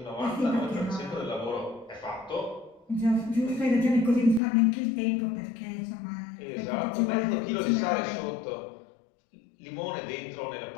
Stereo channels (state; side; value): drops out; right; at 4.4 s